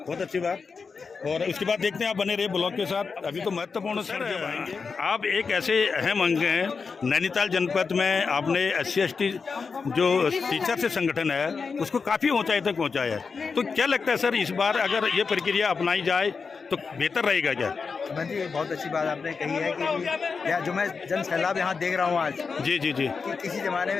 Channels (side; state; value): right; quieter; 5.1 dB